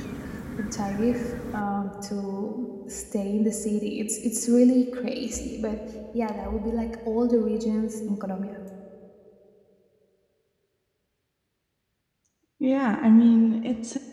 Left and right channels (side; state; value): both; identical; correlation 1.00